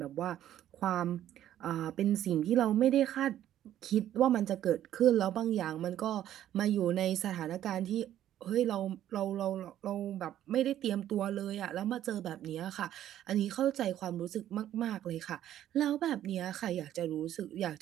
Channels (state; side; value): quieter; left; 11.8 dB